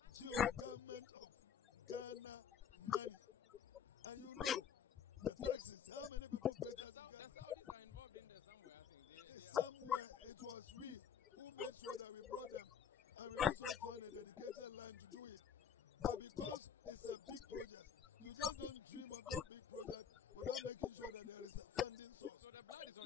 government of Ghana money. And you know, the taxes, how many people pay taxes? The Saudis are involved in there somewhere, I think. Somewhere. It was we who made sure that we brought them. And we also found a dedicated line to do it. But because it's a big project, you just don't dream of that big project without making sure that there is a funding source. So the blood is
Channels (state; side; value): quieter; right; 7.6 dB